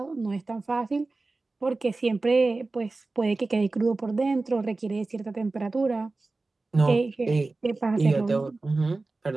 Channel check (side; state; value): left; quieter; 3.4 dB